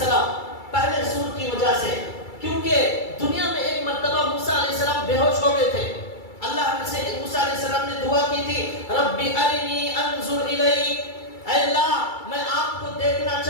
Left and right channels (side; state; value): right; late; 2.3 ms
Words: پہلے سور کی وجہ سے, کیونکہ دنیا میں ایک مرتبہ موسیٰ علیہ السلام بے ہوش ہو گئے تھے. اللہ سے موسیٰ علیہ السلام نے دعا کی تھی ربی ارنی انظر الیک, اے اللہ میں آپ کو دیکھنا